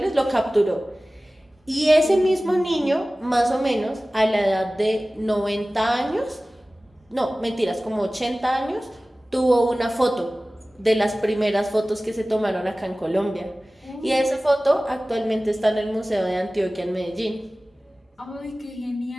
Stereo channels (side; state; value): both; normal; correlation 0.97